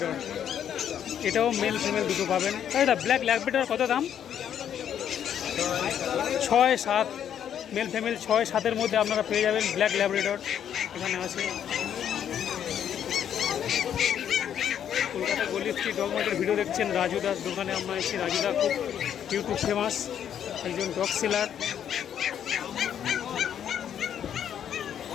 এটাও মেল ফিমেল দুটো পাবেন। দাদা ব্ল্যাক ল্যাব্রাডর কত দাম? 6-7 মেল ফিমেল 6-7-এর মধ্যে আপনারা পেয়ে যাবেন ব্ল্যাক ল্যাব্রাডর। এখানে আছে কলকাতা গলি স্ট্রিট ডগ মার্কেটের ভিডিও দেখছেন। রাজুদার দোকানে আমরা এসেছি। রাজুদা খুব ইউটিউব ফেমাস একজন ডগ সেলার।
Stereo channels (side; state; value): right; quieter; 9.3 dB